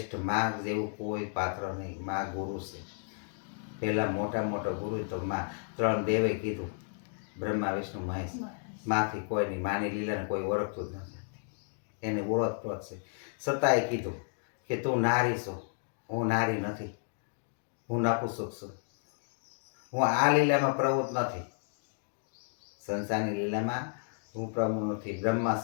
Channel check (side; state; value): right; silent; digital silence